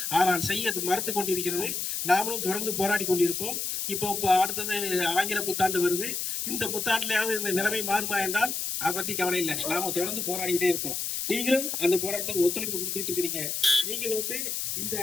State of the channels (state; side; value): noise; left; hiss, 2 dB below the sound